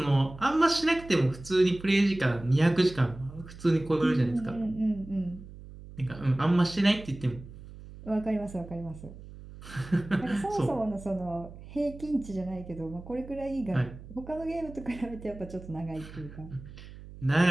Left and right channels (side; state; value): right; noise; hum, 16 dB below the sound